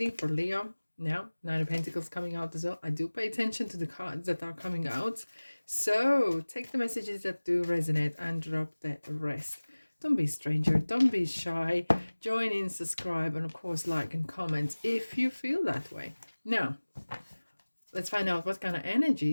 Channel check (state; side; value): inverted; both; correlation -1.00